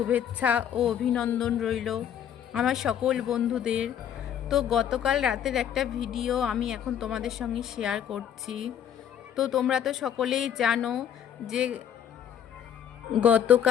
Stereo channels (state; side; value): quieter; right; 9.2 dB